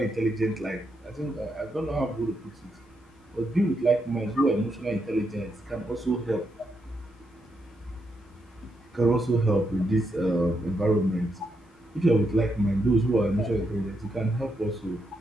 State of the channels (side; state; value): both; normal; correlation 0.81